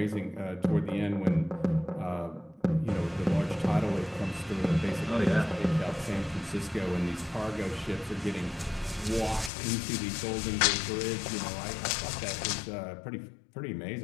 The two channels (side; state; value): right; drops out; at 9.5 s